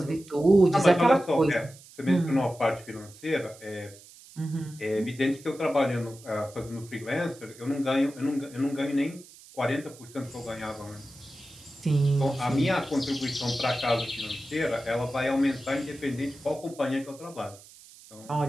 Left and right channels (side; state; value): right; noise; hiss, 21 dB below the sound